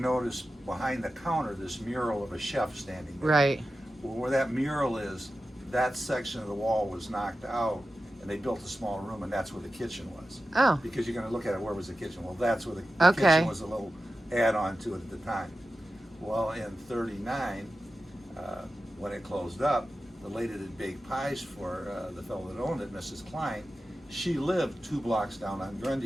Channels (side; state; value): both; normal; correlation 0.93